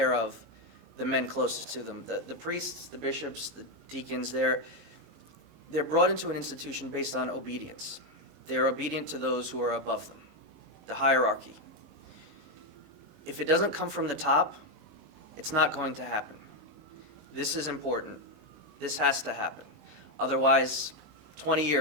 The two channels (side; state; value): left; late; 19 ms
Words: of the men closest to them? The priests, the bishops, the deacons, they're brought into an institution based on obedience. They're obedient to those who are above them, the hierarchy. If it doesn't come from the top, it's not going to happen. This is important. This has to happen. Otherwise, 20